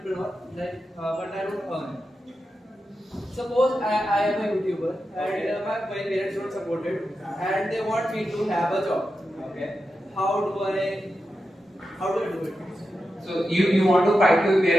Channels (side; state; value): both; normal; correlation 0.89